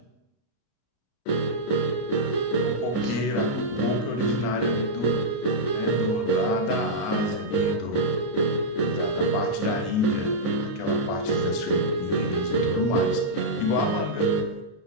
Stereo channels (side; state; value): right; late; 33 ms